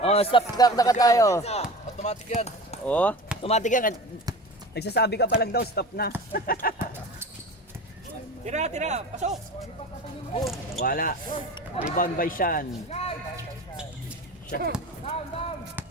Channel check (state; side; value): normal; both; correlation 0.34